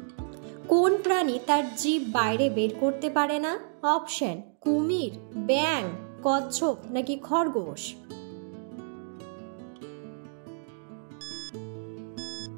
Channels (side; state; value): left; silent; digital silence